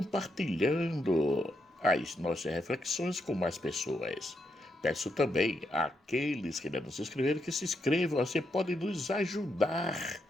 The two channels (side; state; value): both; normal; correlation 0.80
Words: as nossas reflexões com mais pessoas. Peço também àqueles que ainda não se inscreveram que se inscrevam, você pode nos ajudar